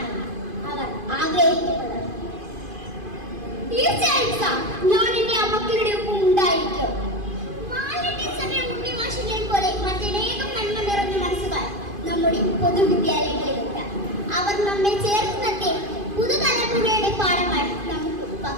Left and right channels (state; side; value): late; left; 2.5 ms